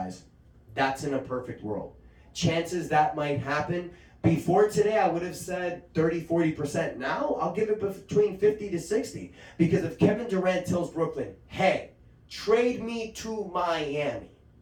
That's in a perfect world. Chances that might happen. Before today, I would have said 30-40%. Now, I'll give it between 50 to 60. Because if Kevin Durant tells Brooklyn, hey, trade me to Miami,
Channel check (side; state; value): both; identical; correlation 1.00